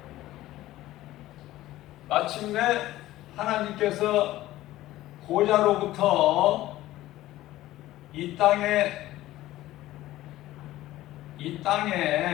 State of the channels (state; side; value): quieter; right; 15.6 dB